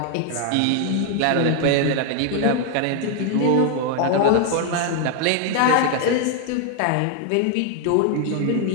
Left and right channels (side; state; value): both; different; correlation 0.00